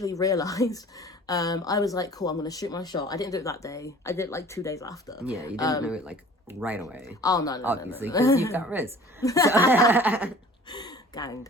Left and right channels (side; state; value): both; normal; correlation 0.47